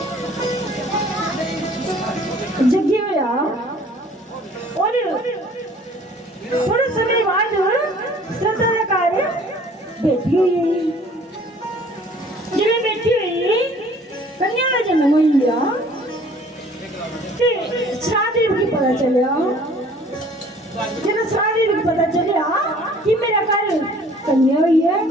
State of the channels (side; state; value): both; normal; correlation 0.53